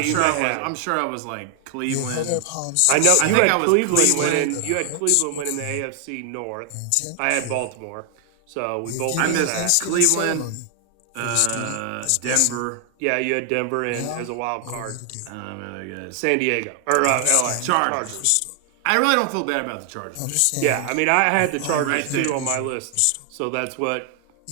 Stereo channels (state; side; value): different; both; correlation 0.00